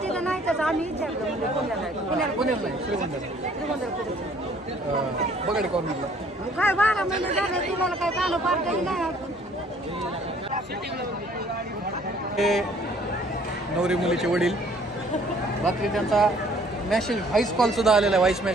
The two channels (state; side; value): normal; both; correlation 0.58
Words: तिथं नाही तर आम्ही विचारलं म्हणजे पुण्याला आहे. पुण्याला नाही, श्रीगोंद्याला. श्रीगोंद्याला कुठे? बगाडी करून मग काय 12 महिने झाले तुम्हाला काय कानं पार केली नाही. हे नवरी मुलीचे वडील. रात्री त्यांचा मेसेज व्हॉइस कॉल सुद्धा आलेला आहे. व्हॉइस